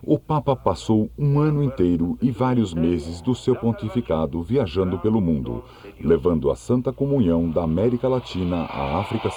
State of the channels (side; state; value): both; identical; correlation 1.00